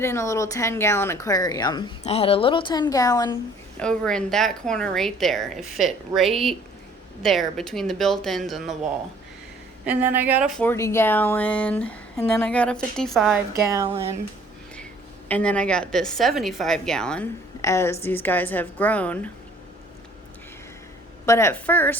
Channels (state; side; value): normal; both; correlation 0.56